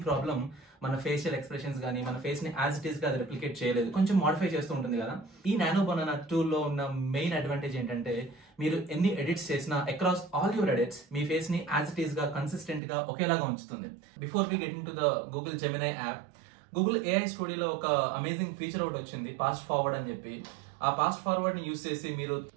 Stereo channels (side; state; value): left; drops out; at 12.8 s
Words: problem మన ఫేషియల్ ఎక్స్ప్రెషన్స్ కానీ మన ఫేస్ ని యాజ్ ఇట్ ఈస్ గా అది రెప్లికేట్ చేయలేదు, కొంచెం మోడిఫై చేస్తూ ఉంటుంది కదా. ఈ నానో బనానా టూల్ లో ఉన్న మెయిన్ అడ్వాంటేజ్ ఏంటంటే మీరు ఎన్ని ఎడిట్స్ చేసినా అక్రాస్ ఆల్ యువర్ ఎడిట్స్ మీ ఫేస్ ని యాజ్ ఇట్ ఈస్ గా కన్సిస్టెంట్ గా ఒకేలాగా ఉంచుతుంది. Before we get into the Google Gemini app, Google AI స్టూడియోలో ఒక అమేజింగ్ ఫీచర్ ఒకటి వచ్చింది, పాస్ట్ ఫార్వర్డ్ అని చెప్పి. ఆ పాస్ట్ ఫార్వర్డ్ ని యూస్ చేసి మీరు